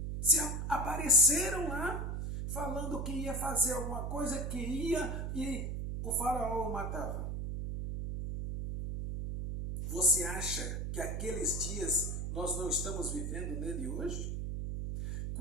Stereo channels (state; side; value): noise; right; hum, 3 dB below the sound